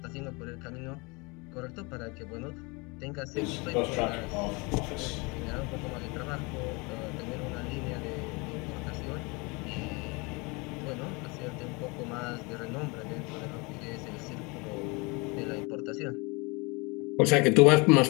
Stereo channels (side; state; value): right; quieter; 28.1 dB